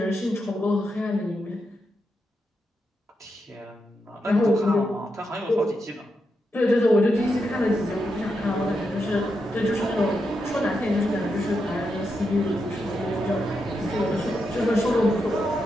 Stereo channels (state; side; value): normal; both; correlation 0.85